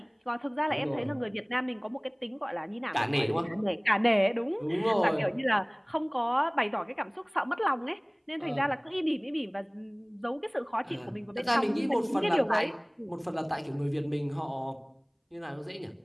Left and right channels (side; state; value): both; identical; correlation 1.00